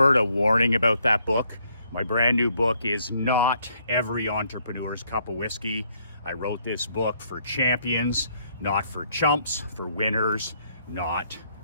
of warning about that book. My brand new book is not every entrepreneur's cup of whiskey. I wrote this book for champions, not for chumps, for winners, not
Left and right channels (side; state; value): both; inverted; correlation -0.70